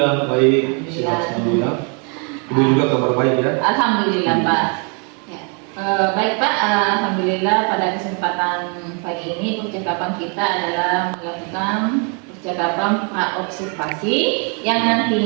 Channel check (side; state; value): left; quieter; 37.2 dB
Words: baik. Sehat semua. Ibu juga kabar baik ya? Alhamdulillah, Pak. Ya. Baik, Pak. Alhamdulillah pada kesempatan pagi ini percakapan kita adalah melakukan percakapan praobservasi yang